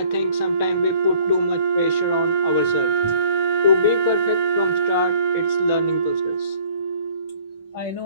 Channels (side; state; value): both; inverted; correlation -0.57